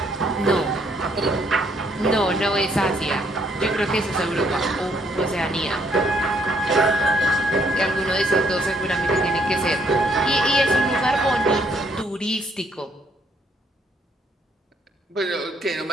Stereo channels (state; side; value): normal; both; correlation 0.69